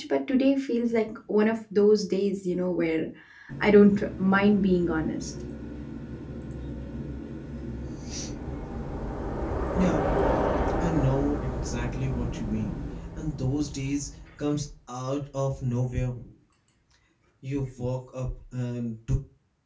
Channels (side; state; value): both; identical; correlation 1.00